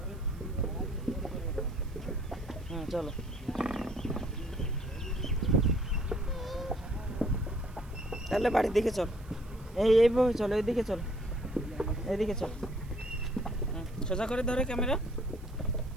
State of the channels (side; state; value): right; noise; hiss, 27 dB below the sound